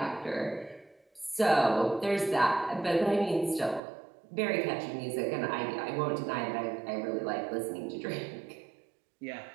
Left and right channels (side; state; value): left; drops out; at 3.8 s